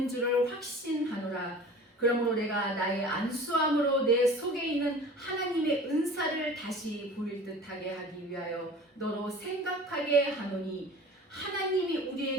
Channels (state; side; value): normal; both; correlation 0.42